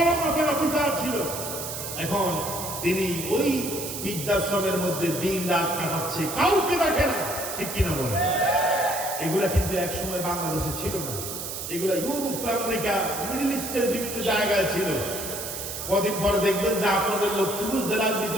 মাপের অফিসার ছিল। এখন তিনি ওই বৃদ্ধাশ্রমের মধ্যে দিন রাত কাটাচ্ছে, কাউকে দেখে না, ঠিক কিনা বলে? এগুলা কিন্তু একসময় বাংলাদেশে ছিল না, এগুলা ইউরোপ, আমেরিকা, মিডল ইস্টের বিভিন্ন জায়গায় ছিল। কদিন পরে দেখবেন যে আপনাদের লক্ষ্মীপুর জেলার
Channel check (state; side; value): noise; right; hiss, 6 dB below the sound